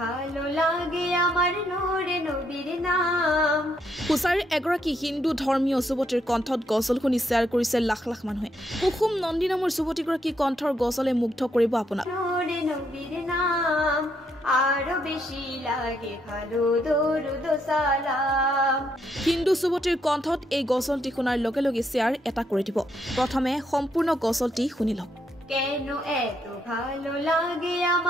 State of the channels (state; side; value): normal; both; correlation 0.75